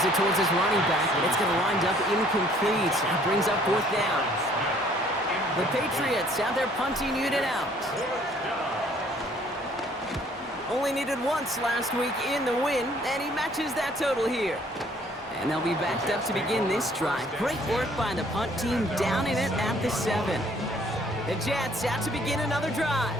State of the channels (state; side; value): normal; both; correlation 0.60